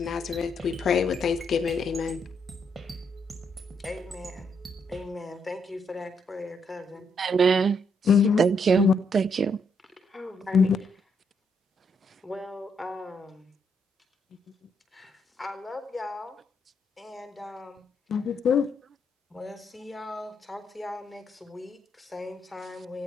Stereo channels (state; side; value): normal; both; correlation 0.76